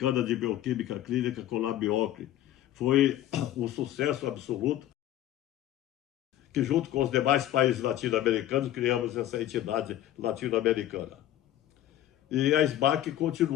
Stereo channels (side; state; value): right; quieter; 12.9 dB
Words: de Bioquímica Clínica, Colabiocle. Foi um sucesso absoluto, que junto com os demais países latino-americanos criamos essa entidade latino-americana. E a SBAC